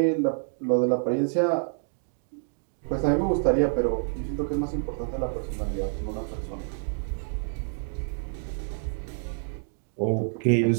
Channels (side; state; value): left; silent; digital silence